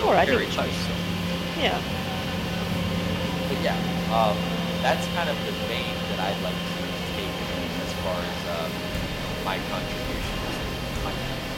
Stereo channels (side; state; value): both; identical; correlation 1.00